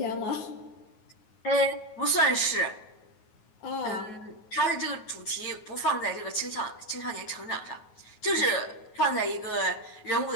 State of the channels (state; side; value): late; right; 9.4 ms